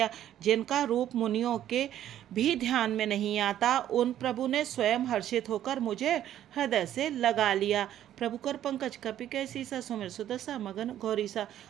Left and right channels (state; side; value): quieter; left; 11.6 dB